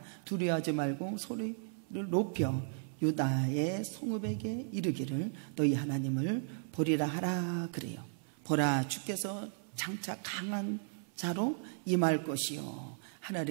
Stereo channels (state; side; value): silent; left; 54 dB below the other